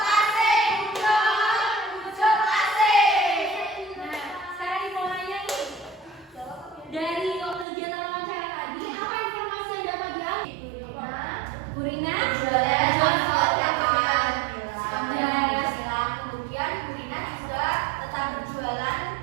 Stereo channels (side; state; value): left; drops out; at 7.7 s